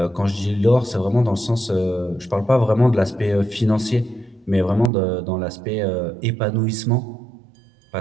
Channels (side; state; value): left; drops out; at 4.9 s